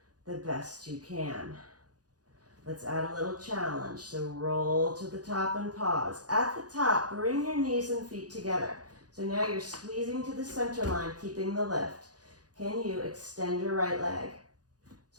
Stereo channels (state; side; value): late; left; 0.68 ms